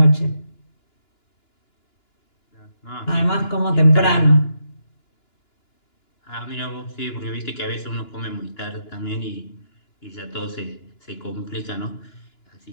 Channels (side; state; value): right; late; 2.9 ms